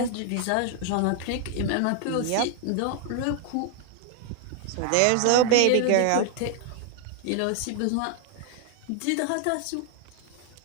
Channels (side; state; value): both; different; correlation 0.00